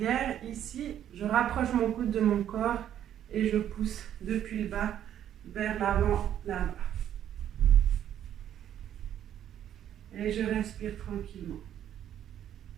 ici, je rapproche mon coude de mon corps et je pousse depuis le bas vers l'avant, là-bas. Et je respire tranquillement.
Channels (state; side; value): quieter; left; 10.5 dB